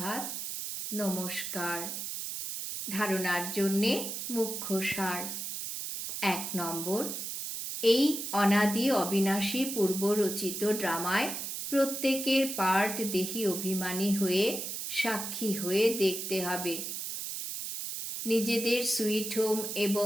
নমস্কার। ধারণার জন্যে মুখ্য সার। 1 নম্বর, এই অনাদি অবিনাশী পূর্বরচিত ড্রামায় প্রত্যেকের পার্ট দেহি অভিমানী হয়ে সাক্ষী হয়ে দেখতে হবে। নিজেদের সুইট হোম এবং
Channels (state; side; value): noise; right; hiss, 5 dB below the sound